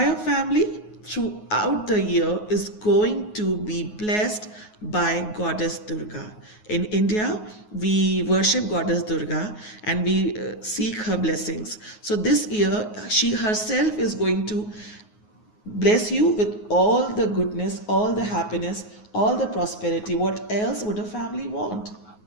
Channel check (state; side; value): late; right; 9.5 ms